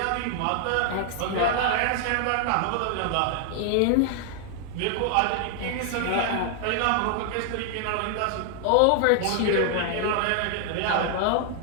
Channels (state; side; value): different; both; correlation 0.00